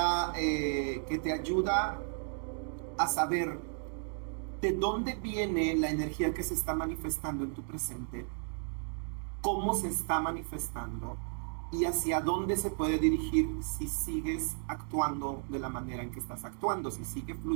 que te ayuda a saber de dónde viene la energía que se está manifestando en tu presente cómo se está manifestando y hacia dónde se puede dirigir si sigues actuando de la manera en que estás actuando, si sigue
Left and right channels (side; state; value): left; silent; 55 dB below the other